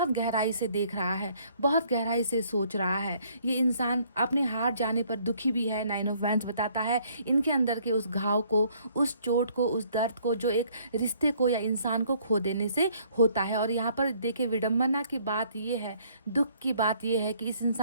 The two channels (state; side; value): inverted; both; correlation -0.63